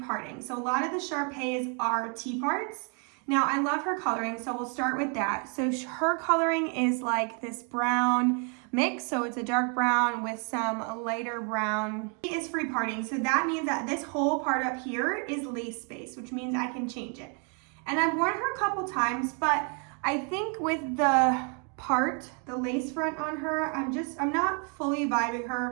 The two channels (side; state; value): left; quieter; 38.0 dB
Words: parting. So a lot of the Sharpays are T-parts. Now I love her coloring, so we'll start with that. So her coloring is like this brown mix, so it's a dark brown with some lighter brown. It is free parting, so that means that this whole part up here is lace space, which means I can change it. And I've worn her a couple times, but I think with the part, the lace front on her, I'm not fully vibing